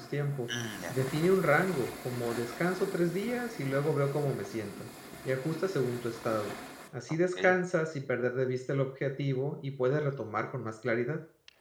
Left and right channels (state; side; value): identical; both; correlation 1.00